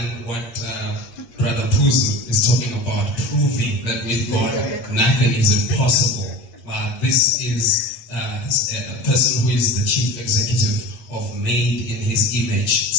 what Brother Puzu is talking about, proving that with God nothing is impossible. This is a person who is the chief executive of Made in His Image.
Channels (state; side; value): late; right; 8.5 ms